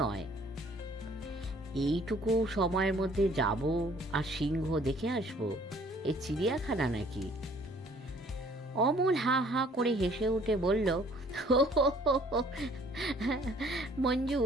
নয়। এইটুকু সময়ের মধ্যে যাব আর সিংহ দেখে আসবো? এ চিড়িয়াখানা নাকি? অমল হা হা করে হেসে উঠে বলল, মঞ্জু,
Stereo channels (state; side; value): normal; both; correlation 0.57